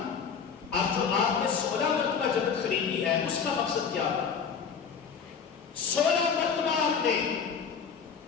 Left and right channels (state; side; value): quieter; right; 6.5 dB